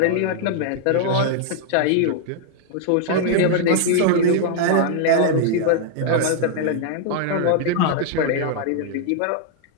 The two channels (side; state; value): both; different; correlation -0.01